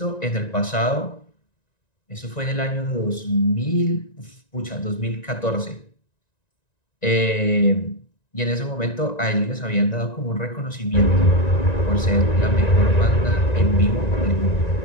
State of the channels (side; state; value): right; late; 1.9 ms